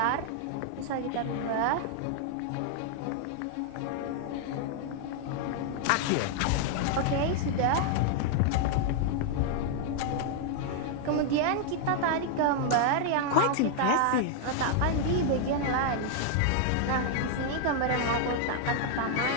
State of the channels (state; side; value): different; both; correlation -0.01